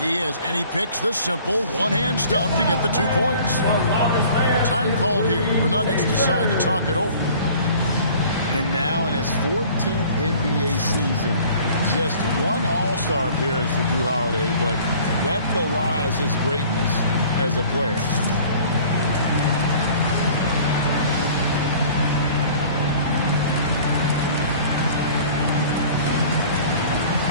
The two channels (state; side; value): inverted; both; correlation -0.49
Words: He is, and he picks the simple one-hand stuff to get the 2 points. Time called here. The Nuggets decide to talk it over. And now in his 14th NBA season, just one All-Star appearance for Jrue Holiday, but that belies his greatness as a player.